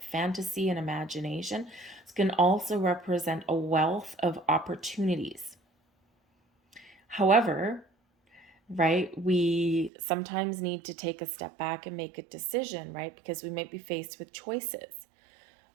fantasy and imagination. This can also represent a wealth of opportunities. However, right, we sometimes need to take a step back and make a decision, right? Because we might be faced with choices,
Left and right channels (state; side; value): drops out; left; at 9.9 s